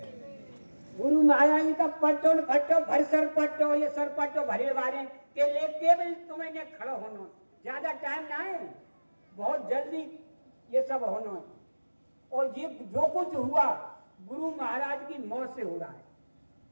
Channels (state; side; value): inverted; both; correlation -1.00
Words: गुरु महाराज का पट्टो फट्टो भरसर पट्टो, ये सरपट्टो भरे वाले के लिए केवल तुम्हें खड़ा होना, ज्यादा टाइम ना है, बहुत जल्दी ये सब होना है। और ये जो कुछ हुआ गुरु महाराज की मौत से हो रहा है,